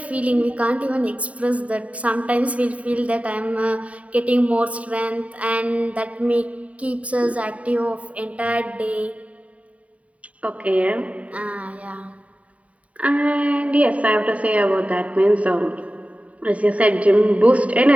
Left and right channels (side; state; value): left; late; 0.067 ms